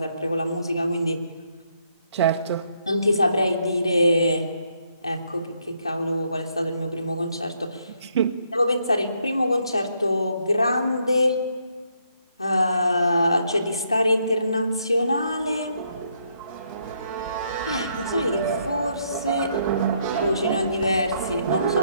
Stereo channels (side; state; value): both; inverted; correlation -0.73